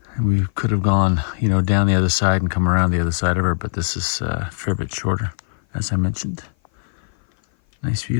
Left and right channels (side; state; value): right; silent; 56 dB below the other